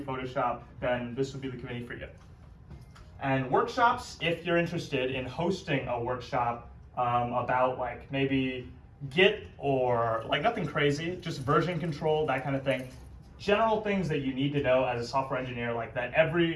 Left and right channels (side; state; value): both; identical; correlation 1.00